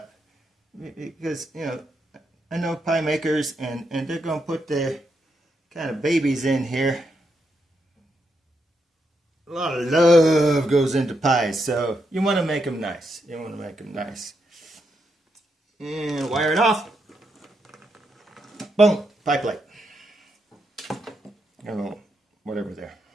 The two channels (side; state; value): both; normal; correlation 0.81